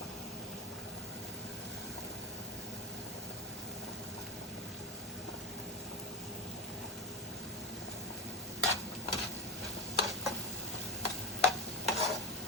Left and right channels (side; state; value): both; normal; correlation 0.21